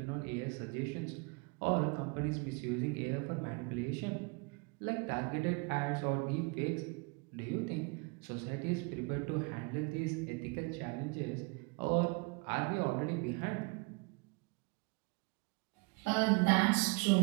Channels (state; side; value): quieter; left; 30.2 dB